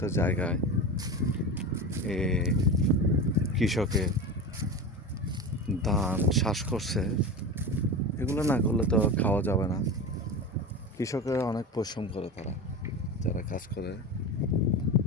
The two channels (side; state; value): both; normal; correlation 0.25